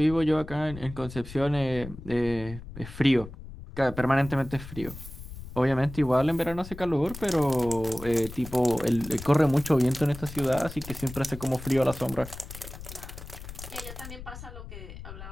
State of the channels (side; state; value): left; noise; rumble, 13 dB below the sound